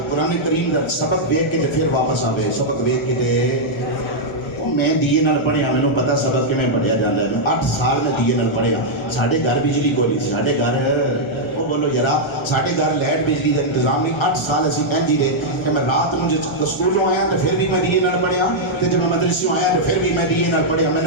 قرآن کریم دا سبق دیکھ کے تے پھر واپس آوے سبق دیکھ کے تے میں دیے نال پڑھیا مینوں پتہ سبق کیویں پڑھیا جاندا ہے 8 سال میں دیے نال پڑھیا ساڈے گھر بجلی کوئی نہیں ساڈے گھر او بولو یارا ساڈے گھر لائٹ بجلی دا انتظام نہیں 8 سال اسی انجی دے کہ میں رات مجھے سکولوں آیا تے پھر بھی میں دیے نال پڑھیا تے جب میں مدرسوں آیا تے پھر بھی میں دیے نال پڑھیا میں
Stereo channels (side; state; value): right; late; 1.3 ms